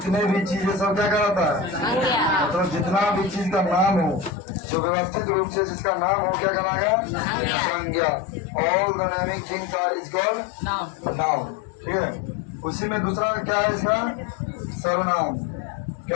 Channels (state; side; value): drops out; right; at 4.3 s